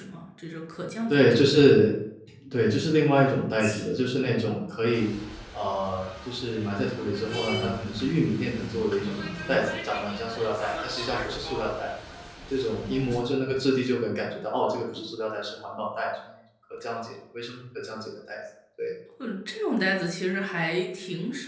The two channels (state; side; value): identical; both; correlation 1.00